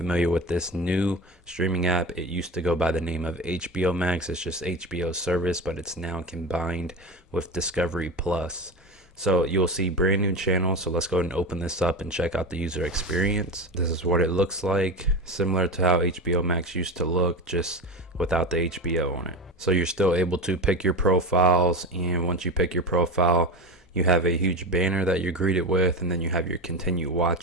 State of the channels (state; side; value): normal; both; correlation 0.25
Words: with this new streaming app, it used to go by the name of HBO Max. It's just HBO service, but it's now combined with Discovery Plus. So you'll see brand new channels. So let's go ahead and open this up and check out the user experience. This is what it looks like, similar to how HBO Max used to look, just without the HBO on it. So you're still able to pick your profiles, and once you pick your profile, you have a huge banner that you're greeted with, and then you have your continue